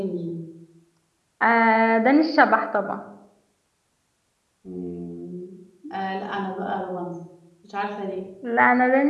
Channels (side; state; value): both; identical; correlation 1.00